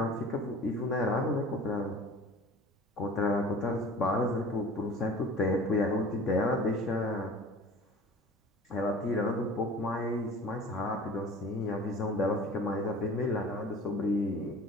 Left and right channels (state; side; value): normal; both; correlation 0.42